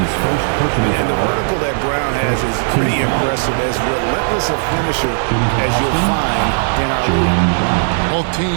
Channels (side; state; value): left; silent; digital silence